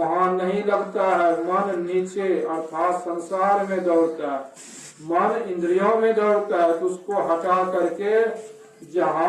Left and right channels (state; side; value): identical; both; correlation 1.00